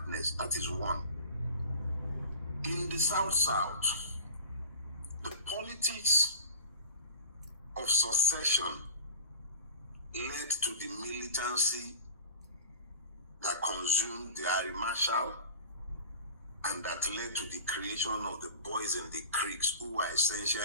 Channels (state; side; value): inverted; both; correlation -0.38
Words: That is one. In the South, the politics of secession led to the militancy that consumed the Air Marshal and that led to the creation of the boys in the creeks, who were